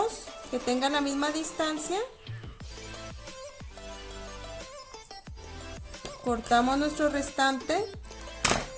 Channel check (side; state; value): both; identical; correlation 1.00